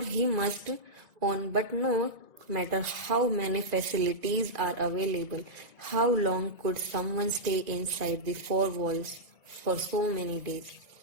must own. But no matter how many facilities are available, how long could someone stay inside the 4 walls for so many days?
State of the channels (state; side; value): late; left; 1.9 ms